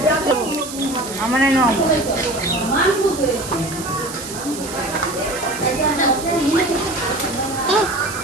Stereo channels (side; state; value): right; noise; hiss, 11 dB below the sound